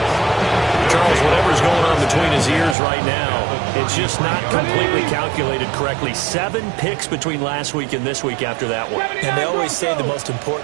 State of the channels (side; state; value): left; drops out; at 2.8 s